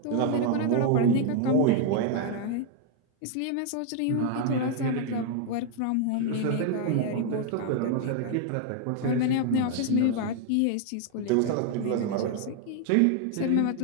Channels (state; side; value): different; both; correlation 0.00